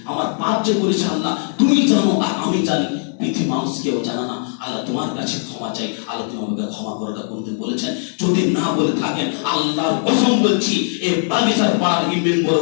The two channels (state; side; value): silent; right; 59 dB below the other